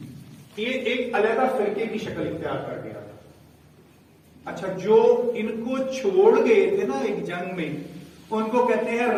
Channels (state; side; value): identical; both; correlation 1.00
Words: یہ ایک علیحدہ فرقے کی شکل اختیار کر گیا تھا. اچھا, جو ان کو چھوڑ گئے تھے نا ایک جنگ میں, ان کو کہتے ہیں